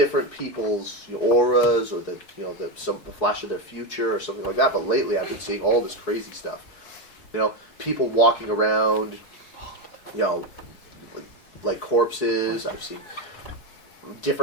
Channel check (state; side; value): late; right; 4.7 ms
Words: people's auras or the flash of their future or something like that. But lately, I've been seeing all this crazy stuff. People walking around, like corpses. I've seen